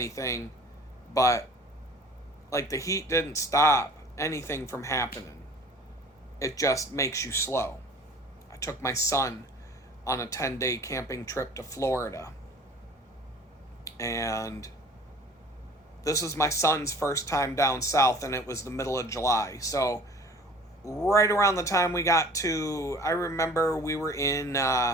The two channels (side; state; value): both; normal; correlation 0.47